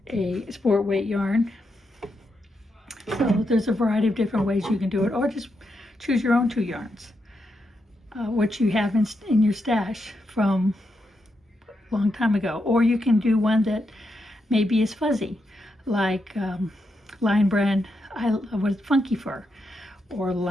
a sport weight yarn. So there's a variety of different ways you can do it, or just choose your own 2 yarns, what you have in your stash from a long time ago. Or you can do one that maybe is fuzzy, like Lionbrand with Funky Fur, or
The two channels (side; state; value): both; normal; correlation 0.83